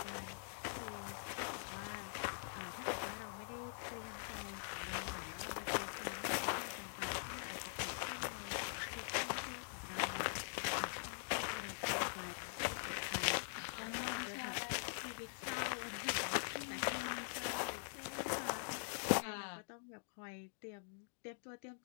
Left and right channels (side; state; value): right; silent; digital silence